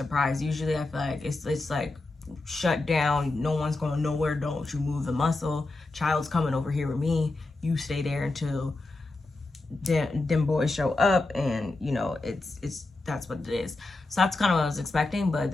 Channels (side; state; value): right; quieter; 3.1 dB